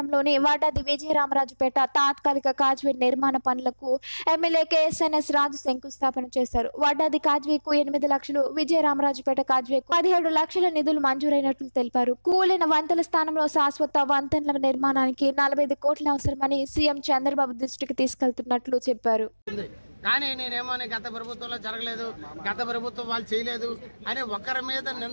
వాటాది విజయరామరాజుపేట తాత్కాలిక కాజ్వే నిర్మాణ పనులకు ఎమ్మెల్యే కేఎస్ఎన్ఎస్ రాజు శంకుస్థాపన చేశారు. వాటాది కాజ్వేకు 8 లక్షలు, విజయరామరాజుపేట కాజ్వేకు 17 లక్షల నిధులు మంజూరైనట్లు తెలిపారు. కూలిన వంతెల స్థానంలో శాశ్వత వంతెనల నిర్మాణానికి 45 కోట్లు అవసరమని సీఎం చంద్రబాబు దృష్టికి తీసుకెళ్తున్నట్లు చెప్పారు. కానీ నేనేమో గత ప్రభుత్వంలో జరగలేదు, గత ప్రభుత్వం వాళ్ళు చేయలేదు అని ఒకరి మీద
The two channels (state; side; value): inverted; both; correlation -1.00